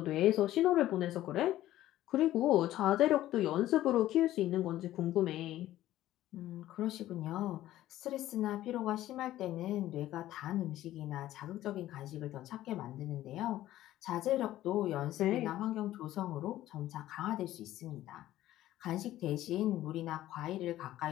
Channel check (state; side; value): quieter; right; 14.2 dB